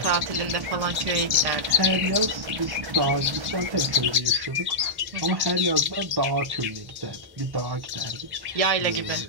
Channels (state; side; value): late; left; 1.1 ms